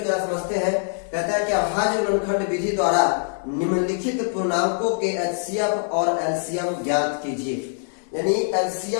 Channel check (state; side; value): silent; right; digital silence